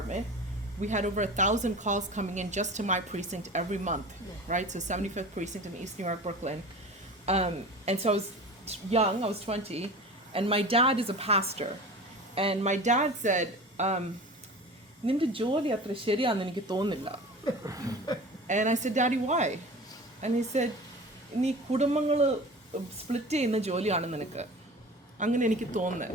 We had over 1,000 calls coming in just to my precinct every month, right? So 75th precinct in East New York, Brooklyn. And so I was young, I was 20, and my dad is a pastor. And my dad said, "Ninde jolly atra ശരിയാണെന്ന് എനിക്ക് തോന്നുന്നില്ല." And I said, "Daddy, why?" And he said, "നീ കുടുംബങ്ങൾ split ചെയ്യുന്ന ജോലിയാണ് നിനക്ക്." അങ്ങനെ എനിക്ക് തോന്നുന്നത്.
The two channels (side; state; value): both; normal; correlation 0.36